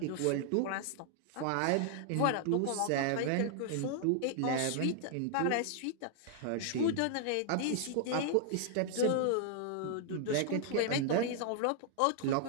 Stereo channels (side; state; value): both; different; correlation 0.00